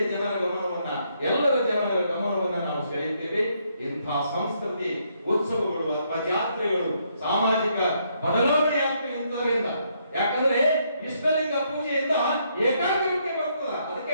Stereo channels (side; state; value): both; inverted; correlation -0.74